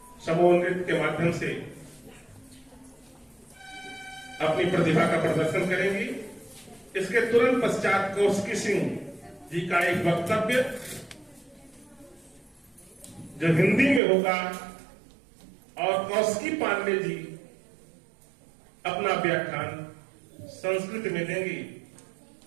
समूह नृत्य के माध्यम से अपनी प्रतिभा का प्रदर्शन करेंगी। इसके तुरंत पश्चात कौशिकी सिंह जी का एक वक्तव्य जो हिंदी में होगा और कौशिकी पांडे जी अपना व्याख्यान संस्कृत में देंगी।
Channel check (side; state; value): left; drops out; at 14.0 s